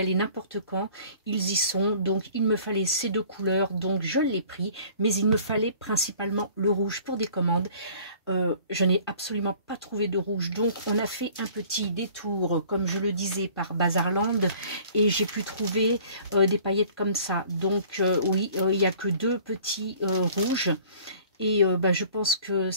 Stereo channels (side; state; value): both; inverted; correlation -0.51